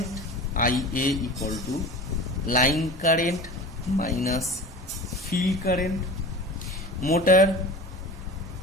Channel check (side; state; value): both; normal; correlation 0.36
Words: Ia equal to line current minus field current, motor